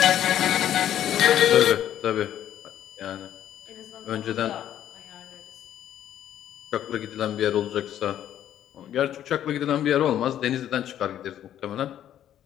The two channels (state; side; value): quieter; right; 11.0 dB